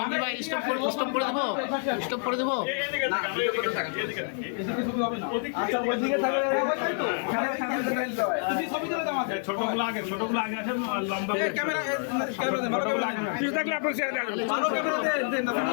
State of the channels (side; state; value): right; silent; 55 dB below the other